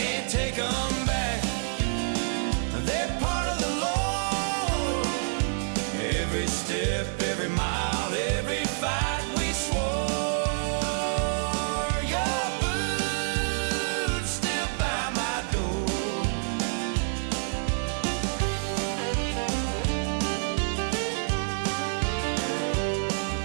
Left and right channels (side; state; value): left; silent; digital silence